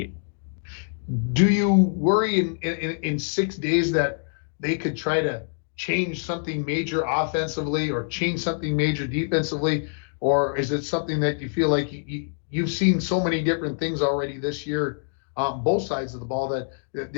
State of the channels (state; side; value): silent; right; digital silence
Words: Do you worry in 6 days that they could try to change something major offensively or change something major defensively? Or is it something that you feel like you've seen so many different things already this year on both sides of the ball